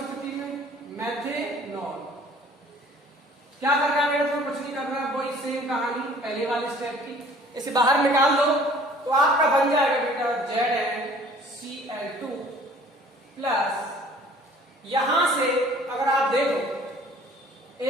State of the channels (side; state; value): both; normal; correlation 0.52